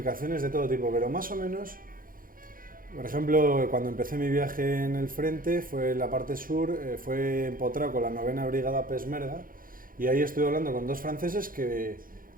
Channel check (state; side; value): late; left; 0.41 ms